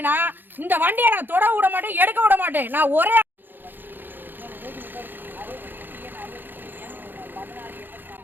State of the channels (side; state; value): left; late; 0.093 ms